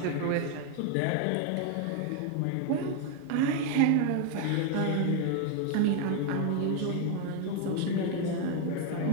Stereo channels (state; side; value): different; both; correlation 0.01